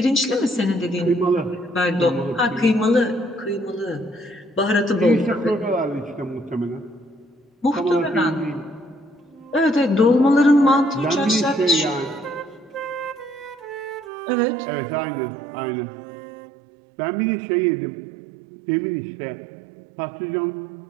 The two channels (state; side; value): drops out; left; at 14.1 s